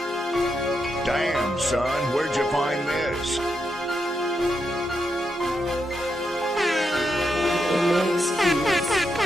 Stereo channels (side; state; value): both; normal; correlation 0.83